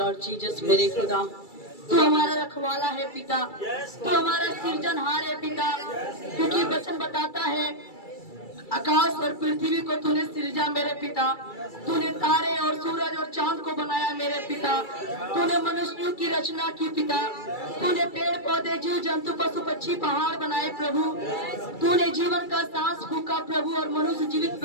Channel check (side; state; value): right; late; 2.3 ms